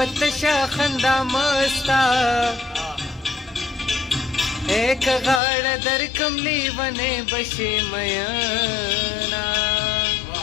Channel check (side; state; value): right; drops out; at 5.4 s